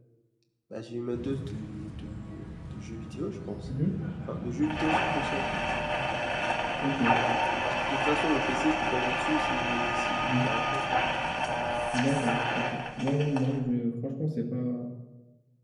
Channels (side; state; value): both; identical; correlation 1.00